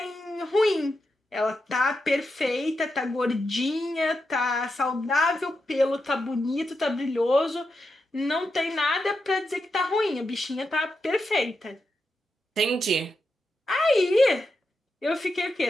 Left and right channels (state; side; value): normal; both; correlation 0.87